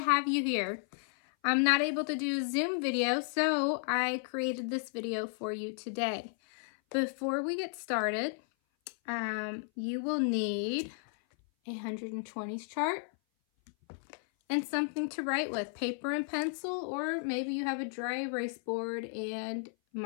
you here. I'm not able to do a Zoom video, so I created this video for you today. Before we get started, you will need a 120s chart and something to write with, paper and pencil, or maybe you have a dry erase board and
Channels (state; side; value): silent; right; 55 dB below the other